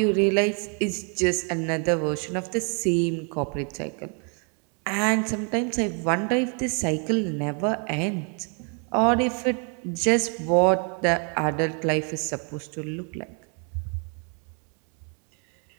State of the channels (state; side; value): quieter; left; 39.6 dB